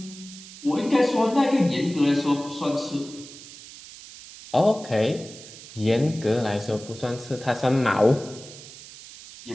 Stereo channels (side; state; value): right; noise; hiss, 17 dB below the sound